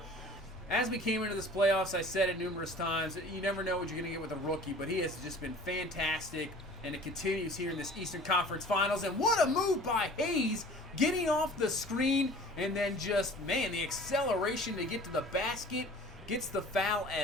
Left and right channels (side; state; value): both; normal; correlation 0.45